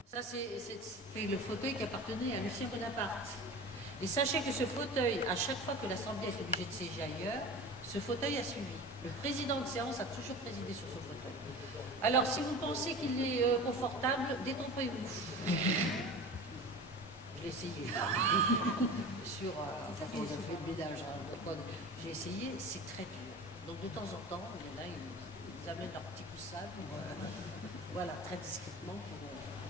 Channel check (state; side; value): normal; both; correlation 0.34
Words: Ça, c'est le fauteuil qui appartenait à Lucien Bonaparte. Et sachez que ce fauteuil, à chaque fois que l'Assemblée est obligée de siéger ailleurs, ce fauteuil a suivi. Le président de séance a toujours présidé sur ce fauteuil. Alors, si vous pensez qu'il est confortable, détrompez-vous. Je l'ai essayé. Sur, enfin, on a fait le ménage. Hein, j'ai essayé, c'est très dur. Donc, de temps en temps, il y en a, ils amènent leur petit coussin pour, voilà, très discrètement